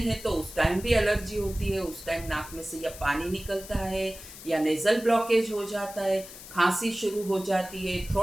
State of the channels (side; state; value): left; noise; hiss, 15 dB below the sound